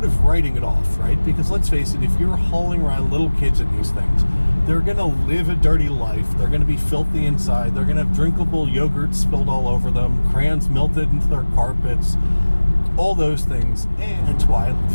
of writing it off, right? Because let's face it, if you're hauling around little kids in these things, they're going to live a dirty life. They're going to be filthy inside. They're going to have drinkable yogurt spilled all over them, crayons melted into their carpets, all those things. And that's why,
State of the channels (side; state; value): both; inverted; correlation -1.00